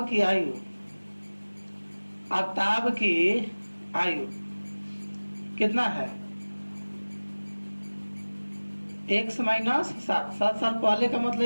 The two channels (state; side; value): inverted; both; correlation -1.00